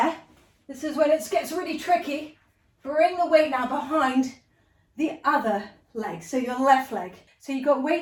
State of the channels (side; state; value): both; identical; correlation 1.00